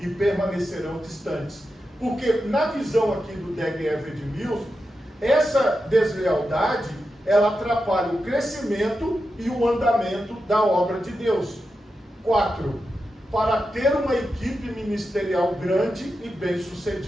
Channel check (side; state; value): both; normal; correlation 0.89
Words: permanecerão distantes. Porque na visão aqui do Dag Heward-Mills, essa deslealdade, ela atrapalha o crescimento e o andamento da obra de Deus. 4. Para ter uma equipe ministerial grande e